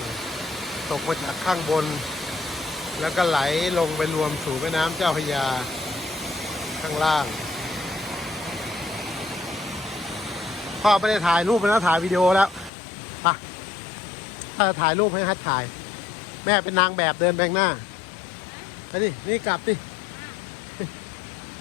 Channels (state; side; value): drops out; right; at 12.7 s